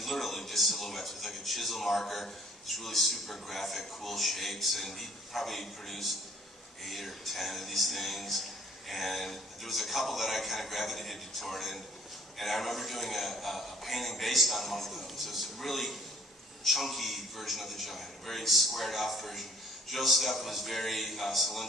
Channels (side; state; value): both; normal; correlation 0.59